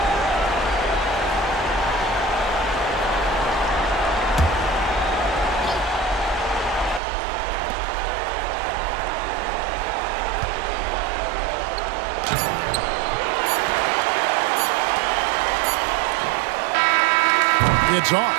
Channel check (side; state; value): left; drops out; at 7.0 s